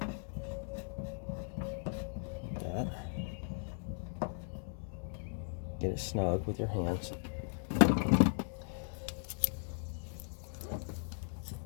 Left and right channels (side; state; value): right; silent; 53 dB below the other